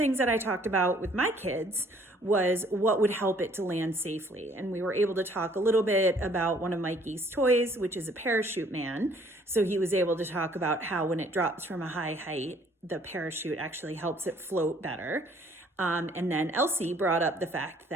that I talked about with my kids was what would help it to land safely. And we were able to talk a little bit about one of Mikey's toys, which is a parachute man. So he was able to talk about how when it drops from a high height, the parachute actually helps it float better. And then Elsie brought up the fact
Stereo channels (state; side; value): normal; both; correlation 0.60